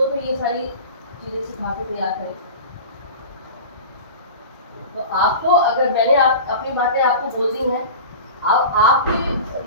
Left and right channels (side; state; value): both; inverted; correlation -0.34